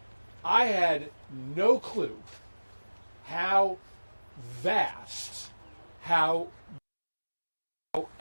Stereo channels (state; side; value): inverted; both; correlation -1.00